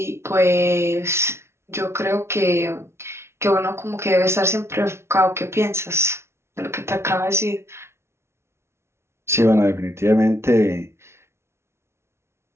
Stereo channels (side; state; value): left; late; 0.13 ms